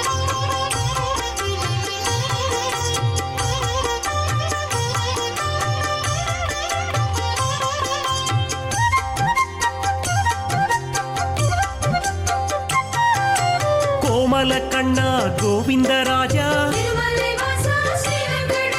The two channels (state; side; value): identical; both; correlation 1.00